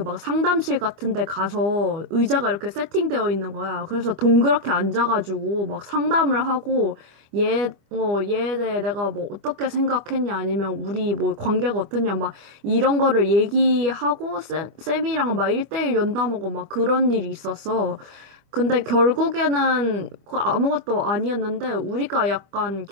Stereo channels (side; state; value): left; late; 25 ms